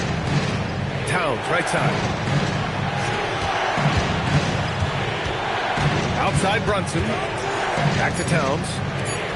Towns, right side. Outside Brunson. Back to Towns.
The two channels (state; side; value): identical; both; correlation 1.00